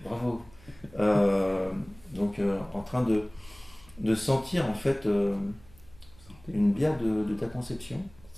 bravo. Donc en train de sentir en fait Santé. une bière de ta conception.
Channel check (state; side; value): noise; right; hum, 24 dB below the sound